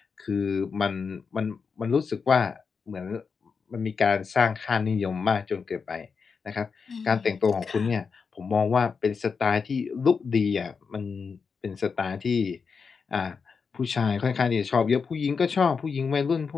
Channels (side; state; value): right; quieter; 5.5 dB